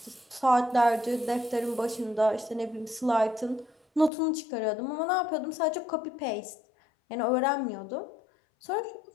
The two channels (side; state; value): right; drops out; at 4.1 s